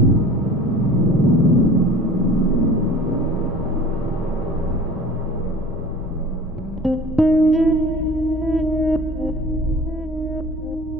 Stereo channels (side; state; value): both; normal; correlation 0.43